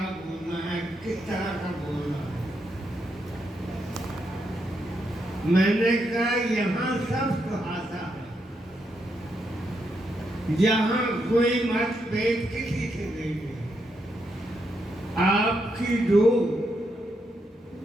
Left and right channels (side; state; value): both; normal; correlation 0.80